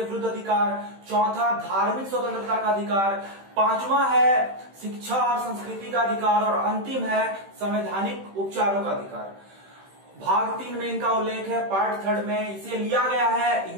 विरुद्ध अधिकार, चौथा धार्मिक स्वतंत्रता का अधिकार, 5वां है शिक्षा और संस्कृति का अधिकार और अंतिम है संवैधानिक उपचारों का अधिकार। भाग 3 में इनका उल्लेख है। पार्ट 3 में इसे लिया गया है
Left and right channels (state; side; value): late; left; 15 ms